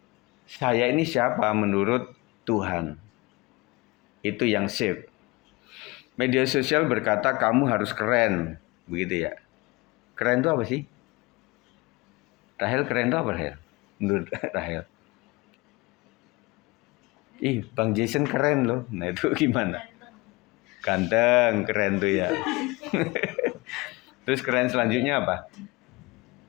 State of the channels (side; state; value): right; quieter; 24.0 dB